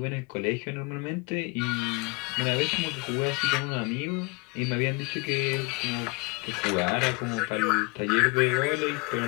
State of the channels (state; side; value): quieter; right; 28.0 dB